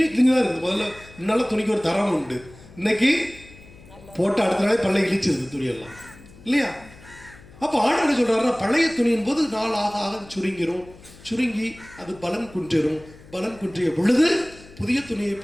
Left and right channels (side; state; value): left; noise; hum, 22 dB below the sound